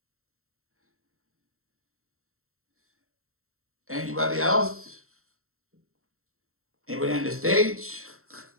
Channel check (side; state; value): left; late; 0.63 ms